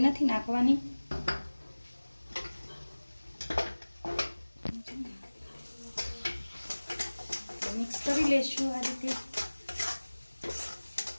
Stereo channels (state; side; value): inverted; both; correlation -1.00